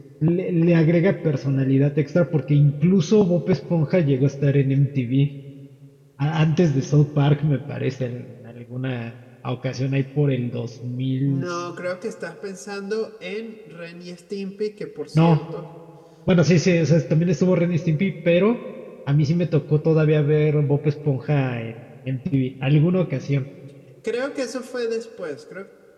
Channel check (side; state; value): both; identical; correlation 1.00